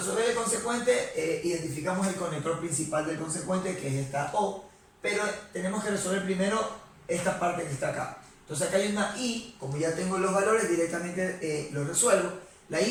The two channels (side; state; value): both; identical; correlation 1.00